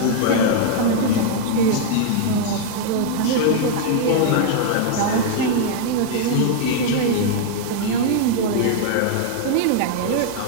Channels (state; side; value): different; both; correlation 0.00